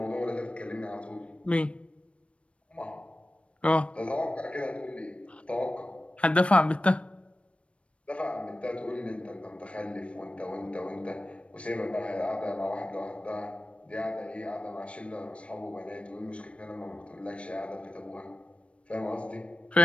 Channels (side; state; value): right; late; 0.061 ms